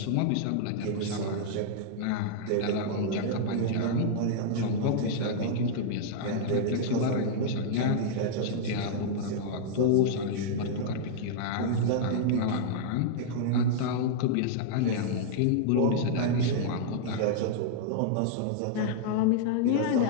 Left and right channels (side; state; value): both; different; correlation -0.01